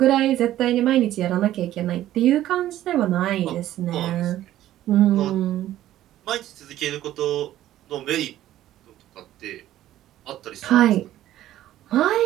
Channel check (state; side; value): quieter; left; 13.4 dB